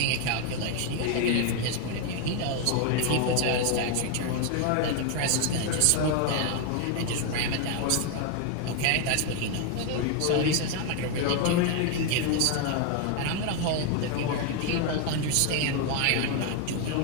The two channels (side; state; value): both; different; correlation 0.00